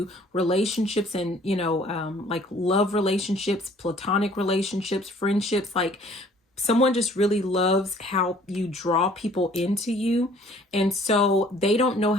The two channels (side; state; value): both; normal; correlation 0.55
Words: relationships and, like love relationships, platonic relationships, friendships, like someone just really loves how you draw people into you. And so they don't know